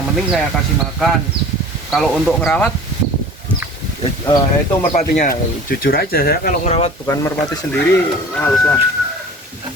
penting saya kasih makan. Kalau untuk ngerawat itu merpatinya, jujur aja saya kalau ngerawat bukan merpati sendiri males lah.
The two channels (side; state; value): both; normal; correlation 0.42